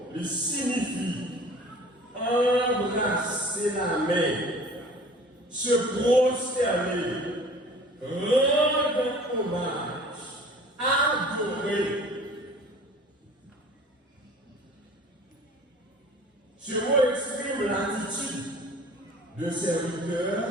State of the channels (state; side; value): normal; both; correlation 0.46